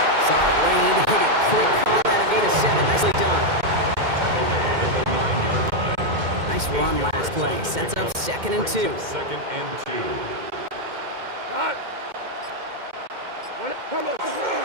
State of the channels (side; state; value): left; late; 2.1 ms